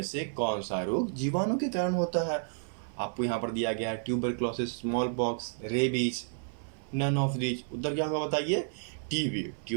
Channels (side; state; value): left; silent; 57 dB below the other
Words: से कौन सा रोग जीवाणु के कारण होता है? आपको यहाँ पर दिया गया है tuberculosis, smallpox, rabies, none of these. उत्तर क्या होगा बताइए? टीबी,